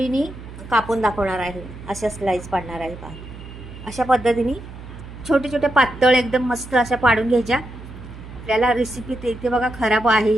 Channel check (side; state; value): right; noise; hum, 14 dB below the sound